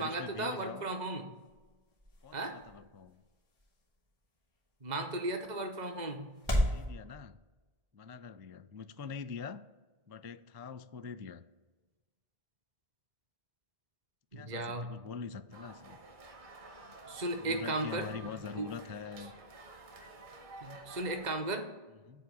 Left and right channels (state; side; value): late; left; 2.0 ms